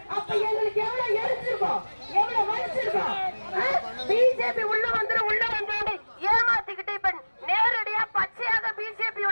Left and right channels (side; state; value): both; inverted; correlation -1.00